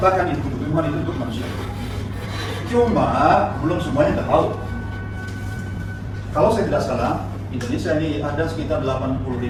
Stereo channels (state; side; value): identical; both; correlation 1.00